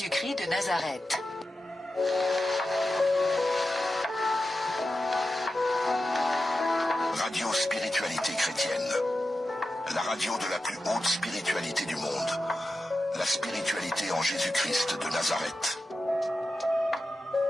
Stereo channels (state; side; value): normal; both; correlation 0.92